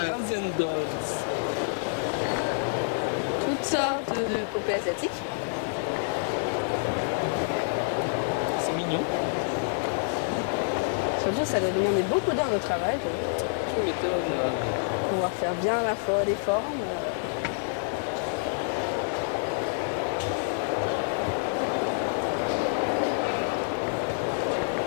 Dolls. toutes sortes de poupées asiatiques. C'est mignon. Surtout, ça doit demander beaucoup d'heures de travail Tu m'étonnes. pour pouvoir faire bien à la fois les formes.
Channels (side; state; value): right; silent; digital silence